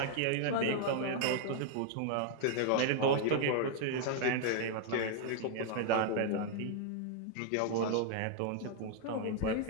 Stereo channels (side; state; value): both; different; correlation 0.00